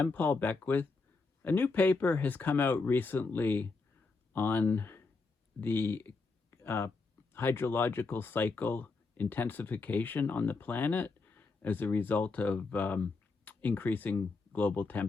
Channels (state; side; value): quieter; right; 4.0 dB